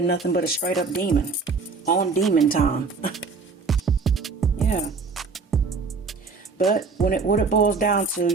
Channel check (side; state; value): left; quieter; 4.6 dB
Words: nothing but a straight up demon. On demon time. Yeah. But what it boils down to,